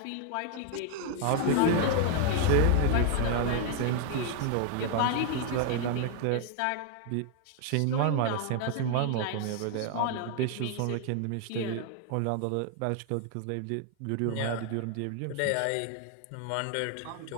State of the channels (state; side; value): different; both; correlation 0.00